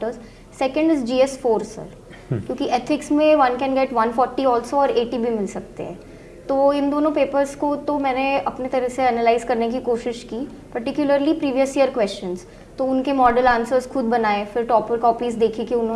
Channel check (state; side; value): identical; both; correlation 1.00